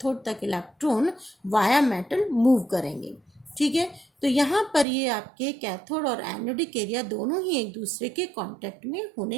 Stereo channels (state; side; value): drops out; left; at 4.9 s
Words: तक इलेक्ट्रॉन वाया मेटल मूव करेंगे। ठीक है। तो यहाँ पर ये आपके कैथोड और एनोडिक एरिया दोनों ही एक दूसरे के कांटेक्ट में